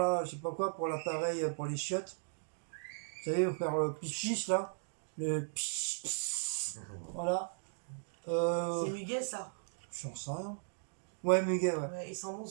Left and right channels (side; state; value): left; silent; digital silence